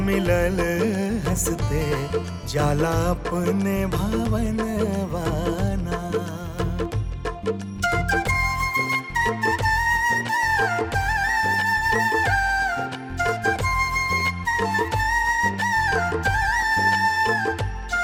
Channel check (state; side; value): identical; both; correlation 1.00